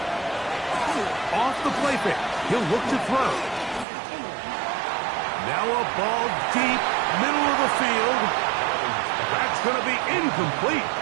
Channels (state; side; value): drops out; left; at 3.9 s